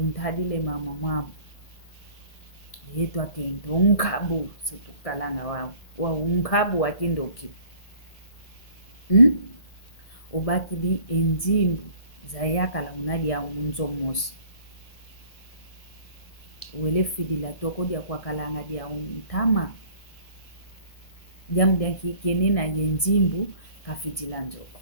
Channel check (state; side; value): late; right; 1.7 ms